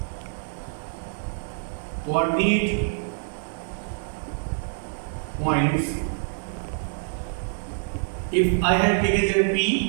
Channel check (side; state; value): left; silent; 61 dB below the other